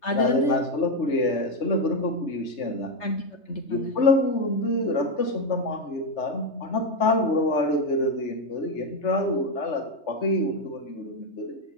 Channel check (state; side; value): late; right; 3.4 ms